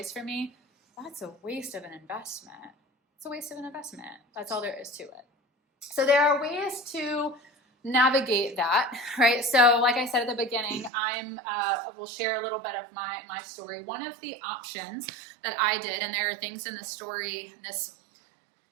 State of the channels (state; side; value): drops out; left; at 10.9 s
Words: for me. That's a waste of an investment. It's a waste of an investment. That's all there is to it. So there are ways to navigate that, right? So like I said at the beginning, will share a little bit of my story. One of the options that I did, and there are things in the story, this